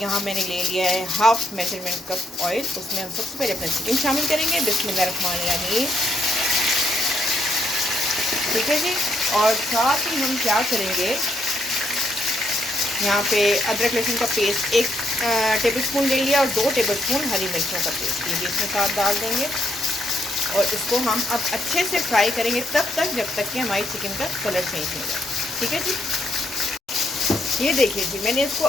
मैंने ले लिया है हाफ मेजरमेंट कप ऑयल। उसमें हम सबसे पहले अपना चिकन शामिल करेंगे। बिस्मिल्लाहिर्रहमानिर्रहीम। ठीक है जी, और साथ ही हम क्या करेंगे, यहाँ पे अदरक लहसुन का पेस्ट 1 टेबलस्पून ले लिया और 2 टेबलस्पून हरी मिर्चों का पेस्ट ये भी इसमें साथ डाल देंगे। और इसको हम अब अच्छे से फ्राई करेंगे तब तक जब तक कि हमारी चिकन का कलर चेंज हो जाए। ठीक है जी, ये देखिए जी, मैंने इसको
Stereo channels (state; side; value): normal; both; correlation 0.75